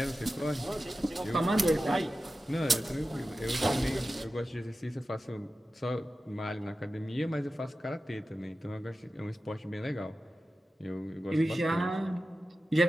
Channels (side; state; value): both; normal; correlation 0.93